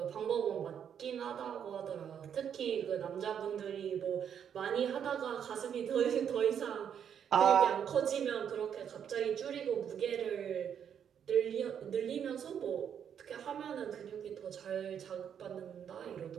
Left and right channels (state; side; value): quieter; left; 8.4 dB